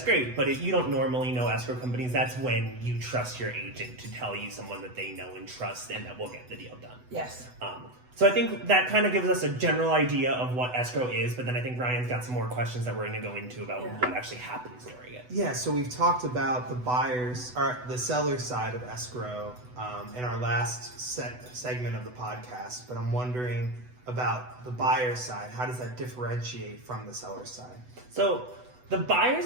great. But if you don't normally know escrow companies, that's when you trust your agent to tell you someone that they know and trust and that will get the deal done. Yes. So I think that kind of gives us a general idea of what escrow is, but then I think Ryan's got some more questions that we're going to go into about what actually happens during it. Yeah, so we've talked about the seller side of escrow in our last segment of the podcast, but I'm wondering about the buyer side. How does that differentiate from the seller side? So the buyer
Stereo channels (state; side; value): late; left; 8.0 ms